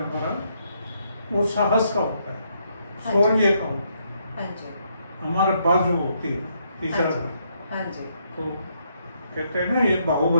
हमारा वो साहस का होता है, हाँ शौर्य का होता है, हाँ जी। हमारे बाजू होती है तीसरा हाँ जी। घर। हाँ जी। तो कहते हैं ना ये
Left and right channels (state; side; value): inverted; both; correlation -0.75